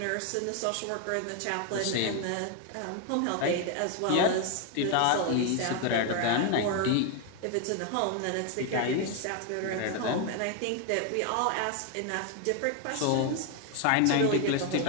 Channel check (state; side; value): different; both; correlation 0.01